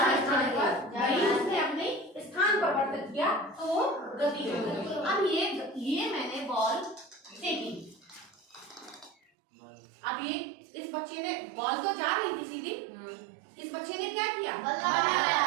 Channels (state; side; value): drops out; left; at 9.2 s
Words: पर उसने अपने स्थान परिवर्तित किया तो वो गति हो गई। अब ये मैंने बॉल फेंकी, अब ये इस बच्चे ने बॉल तो जा रही थी सीधी, इस बच्चे ने क्या किया? बल